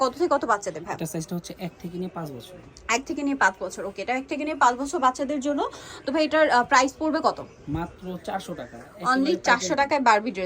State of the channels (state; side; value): identical; both; correlation 1.00